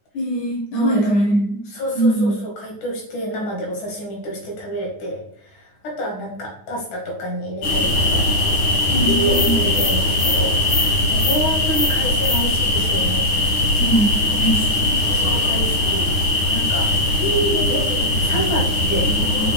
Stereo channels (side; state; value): right; late; 9.6 ms